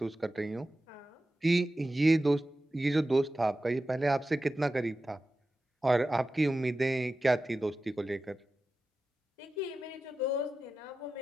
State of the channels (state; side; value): normal; both; correlation 0.93